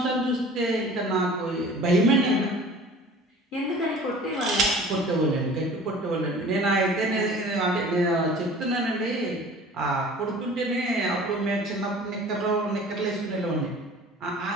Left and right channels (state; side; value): normal; both; correlation 0.45